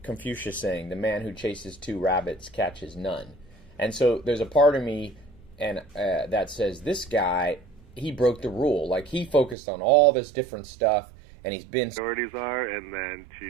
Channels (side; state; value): left; drops out; at 9.6 s